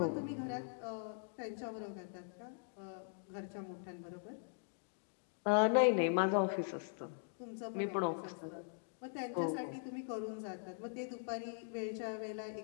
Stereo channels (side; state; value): right; silent; digital silence